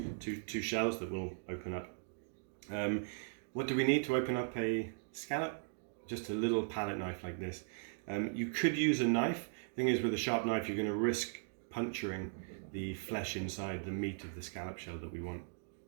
shells that will open up. What do we need to open up a scallop? Just a little palette knife like this. You could use a knife. The thing is, with a sharp knife, you're going to risk puncturing the flesh inside the meat of the scallop shell that we want.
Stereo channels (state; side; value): silent; left; digital silence